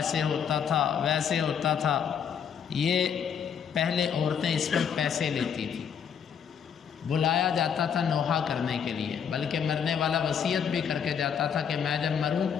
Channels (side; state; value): right; quieter; 7.7 dB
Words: ہوتا تھا، ویسے ہوتا تھا۔ یہ پہلے عورتیں اس پر پیسے لیتی تھیں، بلایا جاتا تھا نوحہ کرنے کے لیے، بلکہ مرنے والا وصیت بھی کر کے جاتا تھا کہ میں جب مروں